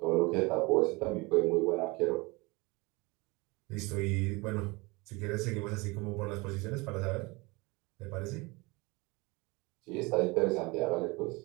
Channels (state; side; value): quieter; left; 25.1 dB